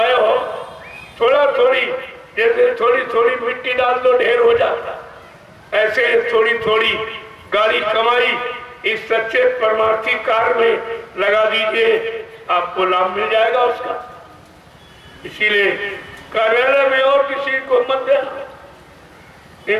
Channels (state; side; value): identical; both; correlation 1.00